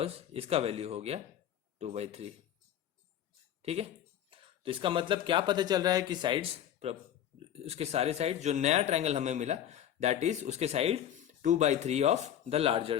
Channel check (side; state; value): right; quieter; 10.5 dB